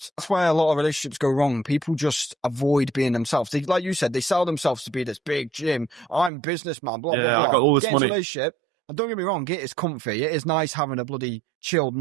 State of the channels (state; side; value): drops out; left; at 6.3 s